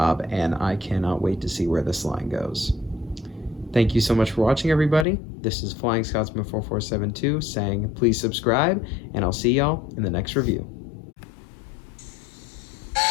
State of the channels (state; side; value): drops out; right; at 5.1 s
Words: and I cannot wait to see where this line goes. Thank you so much for watching, everybody. This is Flying Scotsman 4472 saying please subscribe, and I'll see y'all in the next review.